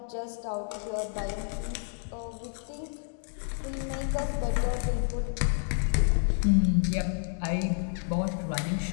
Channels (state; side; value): silent; right; 58 dB below the other